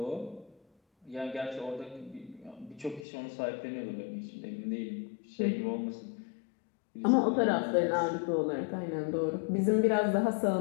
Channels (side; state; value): right; drops out; at 3.1 s